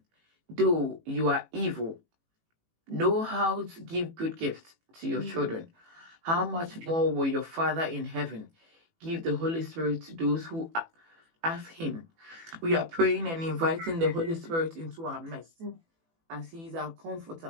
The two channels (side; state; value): left; late; 18 ms